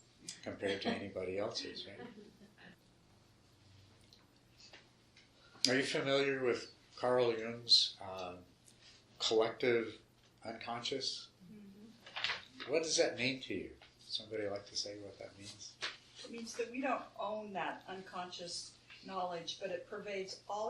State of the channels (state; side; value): identical; both; correlation 1.00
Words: compared to anybody else's, right? Are you familiar with Carl Jung's collective unconscious? Mm-hmm. What does that mean to you? Somebody like to say what that means? It means that we don't own that unconscious knowledge, but it pervades